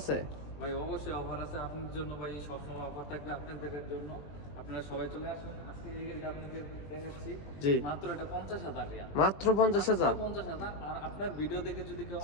ভাই অবশ্যই অফার আছে আপনার জন্য ভাই, সবসময় অফার থাকবে আপনাদের জন্য। আপনারা সবাই চলে আসুন। আজকে এই গাড়িটা আপনাদের দেখাচ্ছি। জি, মাত্র এটা 50,000 রিয়াল। মাত্র 50,000। 50,000। আর আপনার ভিডিও দেখে যদি কেউ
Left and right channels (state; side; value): late; right; 20 ms